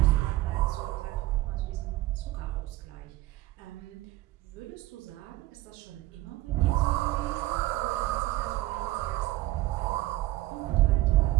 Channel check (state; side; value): quieter; left; 16.7 dB